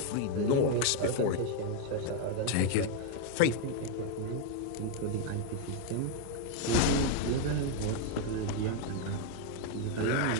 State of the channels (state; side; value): different; both; correlation 0.01